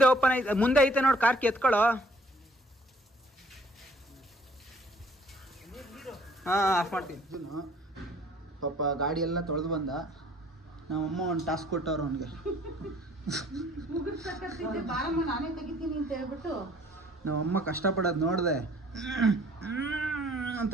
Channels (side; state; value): both; normal; correlation 0.57